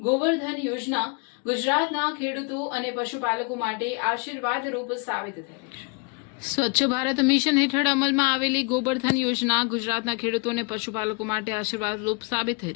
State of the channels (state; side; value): quieter; right; 32.4 dB